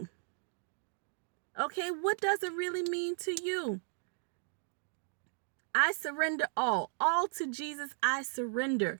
Okay, what does it really mean to you? I surrender all to Jesus. I surrender.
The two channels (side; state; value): left; silent; 54 dB below the other